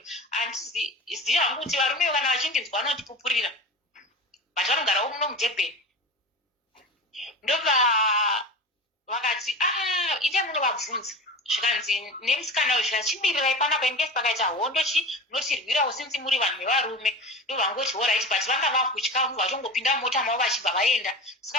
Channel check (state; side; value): normal; both; correlation 0.32